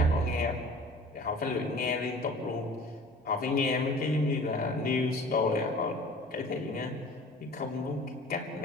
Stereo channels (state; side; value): normal; both; correlation 0.44